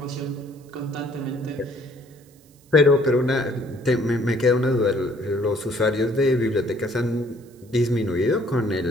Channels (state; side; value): noise; right; hiss, 30 dB below the sound